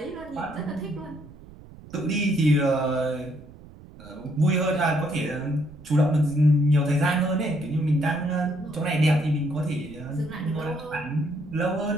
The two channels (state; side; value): noise; right; rumble, 19 dB below the sound